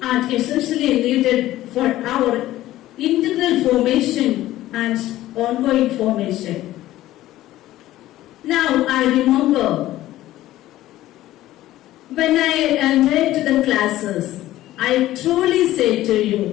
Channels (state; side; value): quieter; right; 15.0 dB